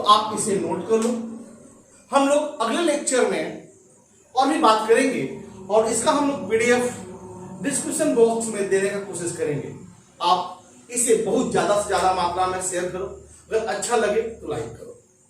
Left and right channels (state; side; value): identical; both; correlation 1.00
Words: आप इसे नोट कर लो। हम लोग अगले लेक्चर में और भी बात करेंगे और इसका हम लोग PDF डिस्क्रिप्शन बॉक्स में देने का कोशिश करेंगे। आप इसे बहुत ज्यादा से ज्यादा मात्रा में शेयर करो। अगर अच्छा लगे तो लाइक करो।